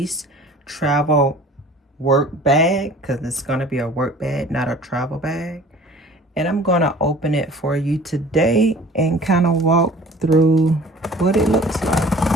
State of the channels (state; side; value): normal; both; correlation 0.47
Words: travel work bag, because it's gonna be a work bag, not a travel bag. And I'm gonna open it for you today and kind of walk through what it looks like.